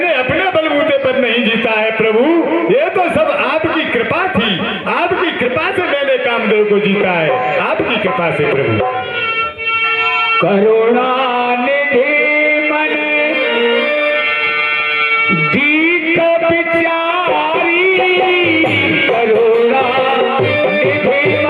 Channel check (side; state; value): both; identical; correlation 1.00